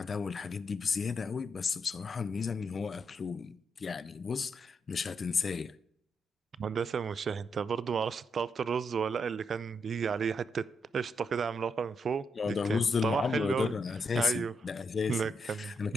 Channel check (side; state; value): both; normal; correlation 0.80